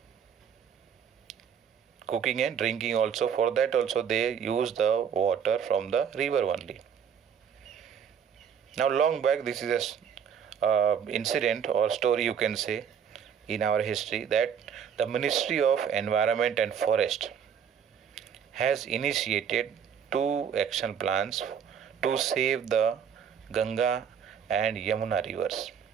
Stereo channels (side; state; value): left; quieter; 7.8 dB